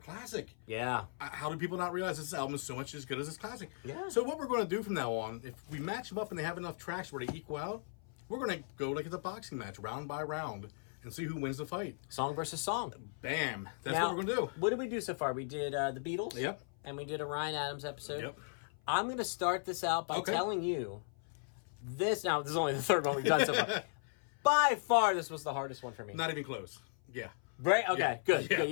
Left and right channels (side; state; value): right; silent; 53 dB below the other